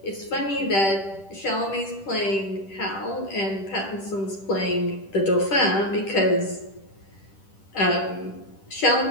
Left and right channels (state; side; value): late; right; 10 ms